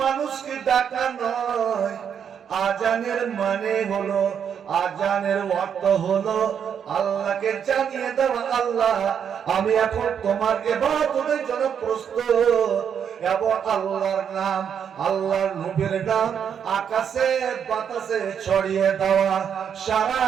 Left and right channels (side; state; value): left; quieter; 7.9 dB